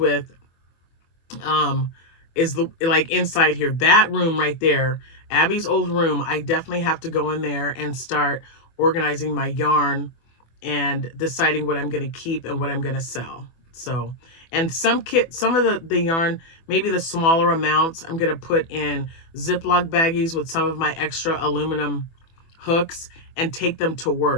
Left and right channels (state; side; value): late; right; 24 ms